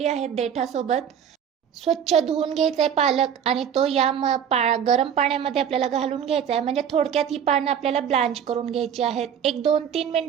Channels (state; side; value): quieter; left; 8.5 dB